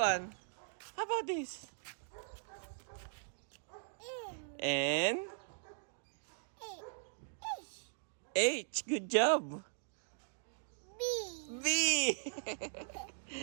How about this? N. H. Good job. B.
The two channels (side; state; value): left; silent; digital silence